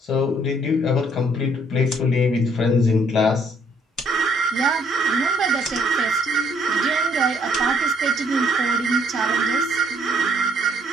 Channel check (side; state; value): both; normal; correlation 0.65